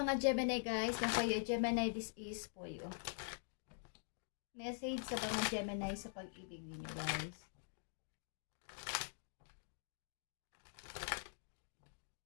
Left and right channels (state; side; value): silent; right; digital silence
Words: Gemini guys, na kayo Gemini, this is for you. Message sa mga Gemini sa pag-ibig ninyo guys.